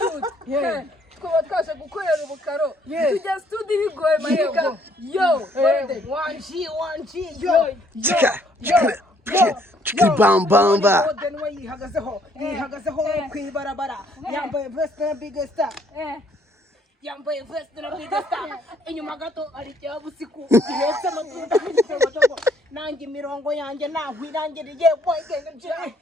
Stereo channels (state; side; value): normal; both; correlation 0.65